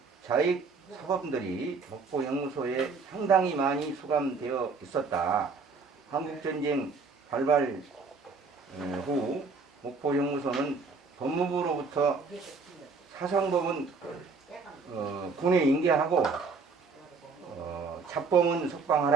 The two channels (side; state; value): left; quieter; 4.6 dB